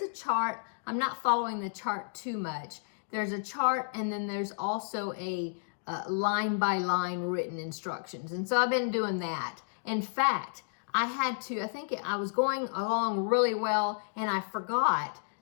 a chart. I'm not following the chart too much. There's a chart, and then there's also a line by line written instructions. And so I've been doing that. In fact, I was going along really well, and I forgot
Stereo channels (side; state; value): right; silent; digital silence